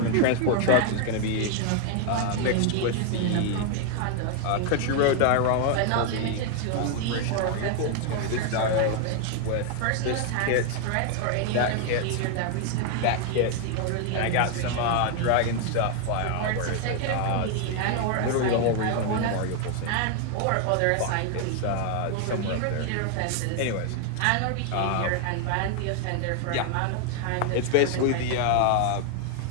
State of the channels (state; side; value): different; both; correlation 0.00